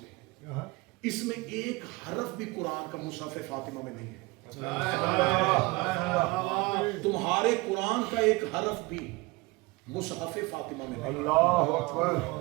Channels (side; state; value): left; quieter; 23.5 dB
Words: ہے اس میں ایک حرف بھی قرآن کا مصحف فاطمہ میں نہیں ہے۔ تمہارے قرآن کا ایک حرف بھی مصحف فاطمہ میں نہیں ہے،